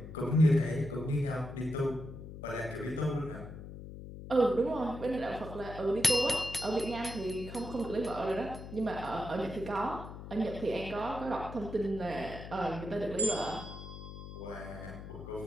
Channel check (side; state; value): left; noise; hum, 11 dB below the sound